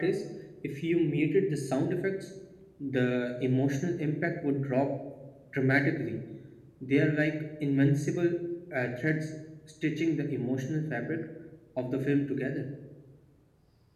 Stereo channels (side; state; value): both; identical; correlation 1.00